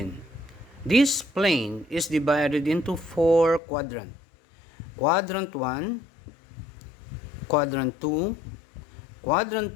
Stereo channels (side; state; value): right; drops out; at 3.6 s